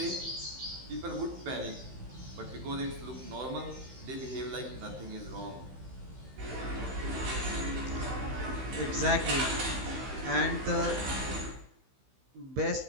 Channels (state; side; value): late; left; 15 ms